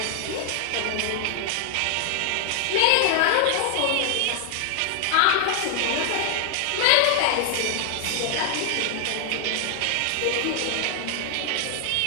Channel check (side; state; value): both; different; correlation 0.00